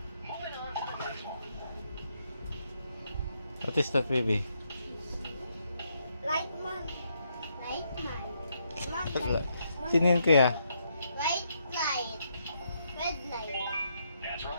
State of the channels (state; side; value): inverted; both; correlation -0.77